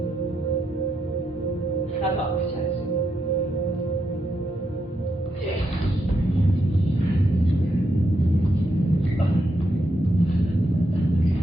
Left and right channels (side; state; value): both; normal; correlation 0.81